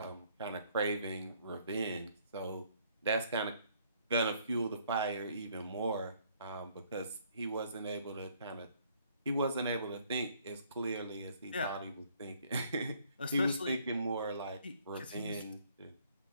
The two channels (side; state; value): both; inverted; correlation -0.63